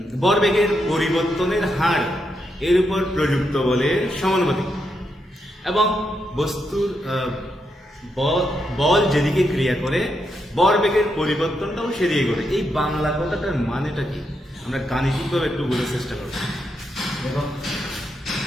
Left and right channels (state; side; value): normal; both; correlation 0.82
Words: ভরবেগের পরিবর্তনের হার এর উপর প্রযুক্ত বলের সমানুপাতিক এবং বস্তুর বল যেদিকে ক্রিয়া করে ভরবেগের পরিবর্তনটাও সেদিকে করে। এই বাংলা কথাটার মানেটা কি আমরা গাণিতিকভাবে একটু বোঝার চেষ্টা করব। দেখো